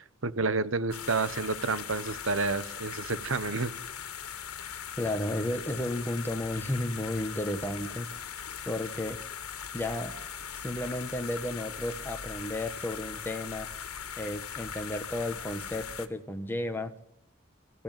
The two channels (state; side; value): normal; both; correlation 0.34